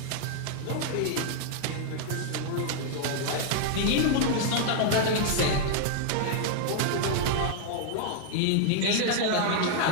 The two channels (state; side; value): different; both; correlation -0.01